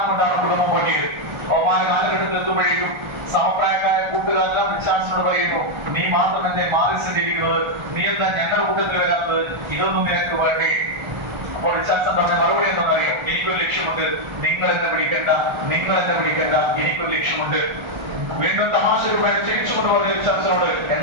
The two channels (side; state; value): left; late; 1.3 ms